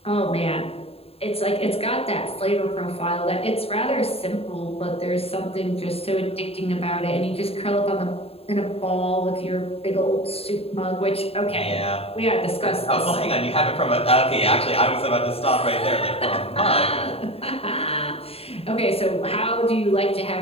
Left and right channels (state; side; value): late; right; 0.28 ms